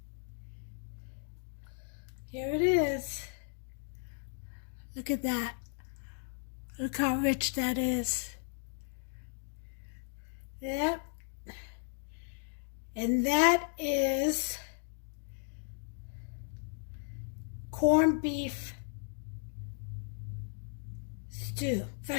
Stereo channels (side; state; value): right; silent; digital silence